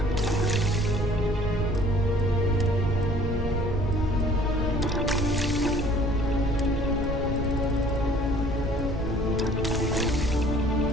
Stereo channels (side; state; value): both; normal; correlation 0.54